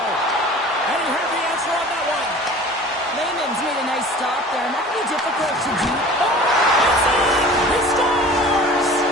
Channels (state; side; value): normal; both; correlation 0.43